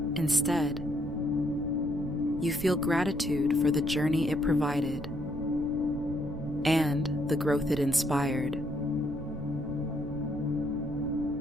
Instead, you feel gratitude for the journey it provided and the growth it inspired.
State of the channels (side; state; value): right; noise; rumble, 10 dB below the sound